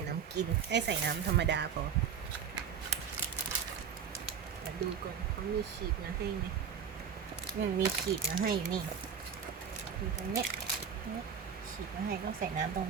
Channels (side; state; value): left; quieter; 7.2 dB